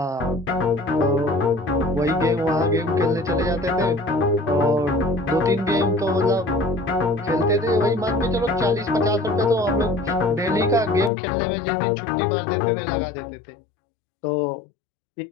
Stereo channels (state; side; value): drops out; right; at 11.1 s